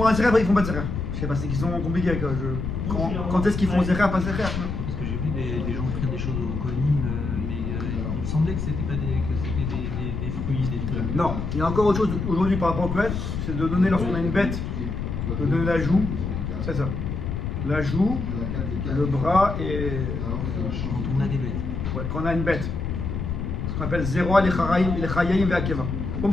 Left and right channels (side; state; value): left; noise; rumble, 3 dB below the sound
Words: un Zecher, après ils font pas de Zecher. Je sais pas, c'est qu'ils sont compliqués avec quand est-ce qu'ils font Zecher, pas Zecher? Parce que j'ai vu des gens faire des choses au Kohanim, mais il me semblait que c'était pas des fruits, des trucs. Non, il y a encore autre chose aujourd'hui par rapport au Kohen, c'est de donner lorsqu'on a une bête, de donner la joue, c'est ça. La joue, le bras et. Quand on a des bêtes. Ouais, quand on a une bête. Ce qu'on appelle Zeroa, les Chayayim et Akeva. Comme